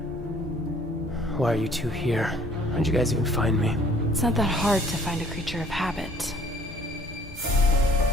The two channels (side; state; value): both; normal; correlation 0.57